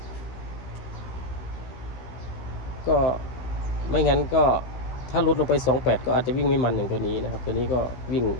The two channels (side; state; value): right; late; 16 ms